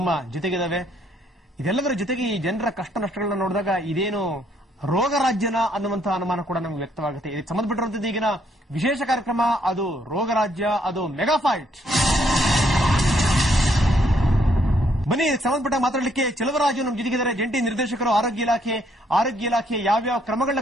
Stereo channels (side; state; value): both; normal; correlation 0.70